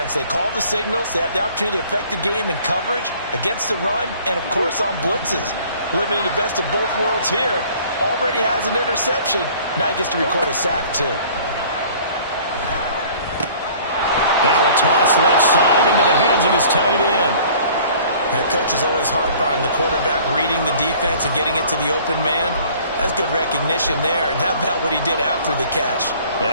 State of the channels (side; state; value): both; inverted; correlation -0.52